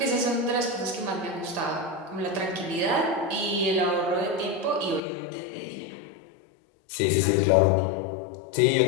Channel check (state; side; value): drops out; right; at 5.0 s